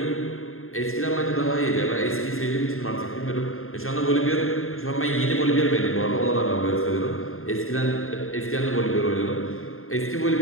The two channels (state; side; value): late; right; 0.61 ms